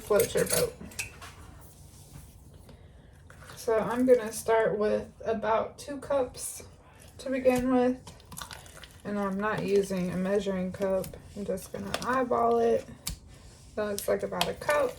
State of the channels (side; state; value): both; identical; correlation 1.00